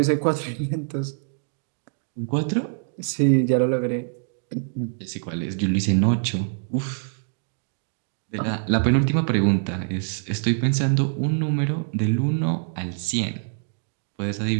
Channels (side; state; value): left; silent; digital silence